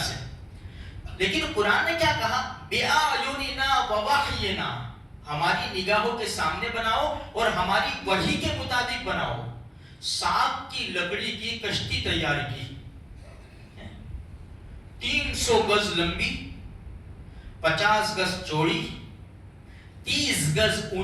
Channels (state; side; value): identical; both; correlation 1.00